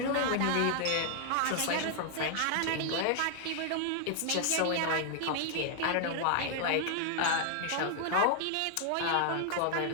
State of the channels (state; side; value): different; both; correlation 0.00